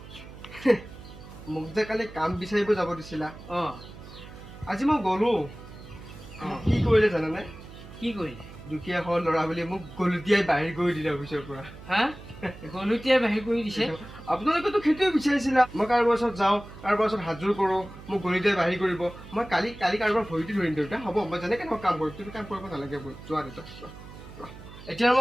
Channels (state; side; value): noise; right; hum, 16 dB below the sound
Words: মোক যে কালি কাম বিচাৰিব যাব দিছিলা, অঁ আজি মই গ'লো। কি কৰিলে জানানে? কি কৰিলে? দুখীয়া ঘৰৰ ল'ৰা বুলি মোক গলুটিয়াই বাহিৰ কৰি দিলে অফিচৰ পৰা। হা, গলুটিয়াই বাহিৰ কৰি দিছে? আপোনালোকেতো সেইটোৱে বিচাৰিছিলা, মই কাৰোবাৰ ওচৰত যাওঁ, কাৰোবাৰ ওচৰত হাতযোৰ কৰোঁ, মোক গলুটিয়াই বাহিৰ কৰিব। মই কালি কাৰোবাৰ ভৰিটো ধৰিম দেউতা। হ'ব, মই যেনেকৈ মই কাম কৰিম, তুমি কাম কৰিব নালাগে। যোৱা দেউতা, যোৱা। এতিয়া